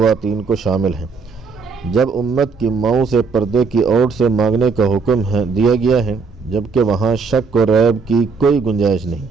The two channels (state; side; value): quieter; left; 4.9 dB